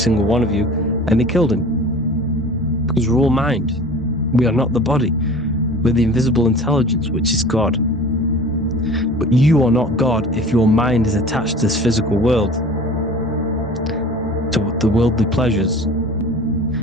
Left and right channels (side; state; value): both; normal; correlation 0.41